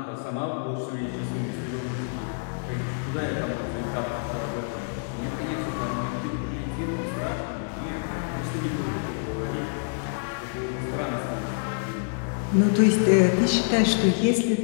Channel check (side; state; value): right; silent; digital silence